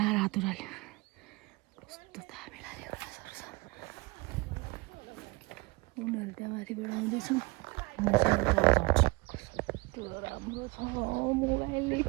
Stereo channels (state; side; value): quieter; left; 25.2 dB